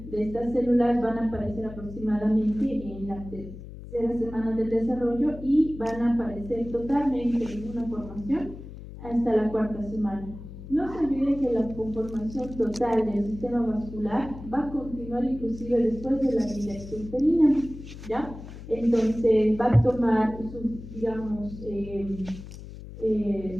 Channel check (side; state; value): left; noise; hum, 13 dB below the sound